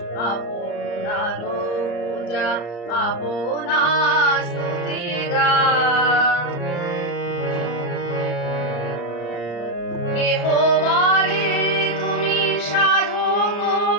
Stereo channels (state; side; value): late; right; 34 ms